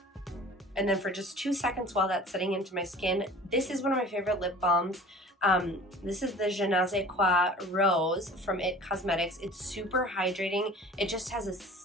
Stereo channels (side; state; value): both; normal; correlation 0.43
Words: And then for just 2 seconds while that's setting into my skin, this is one of my favorite lip balms. This is the Je ne sais quoi Rose from IT Cosmetics. It's super hydrating. It just